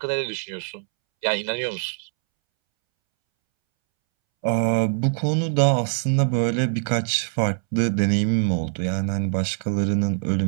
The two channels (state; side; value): silent; left; 63 dB below the other